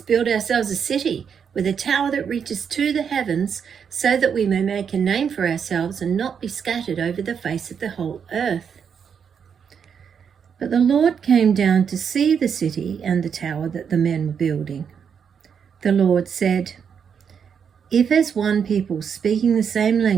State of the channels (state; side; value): quieter; left; 7.1 dB